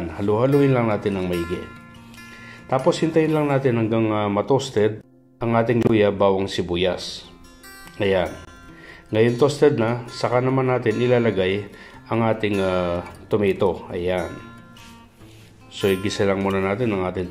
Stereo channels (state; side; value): identical; both; correlation 1.00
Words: halu-haluin lang natin ng maigi. Tapos hintayin lang natin hanggang matoasted ang ating luya, bawang, sibuyas. Ayan. Ngayon toasted na, saka naman natin ilalagay ang ating tomato. Ayan. So igisa lang muna natin ang ating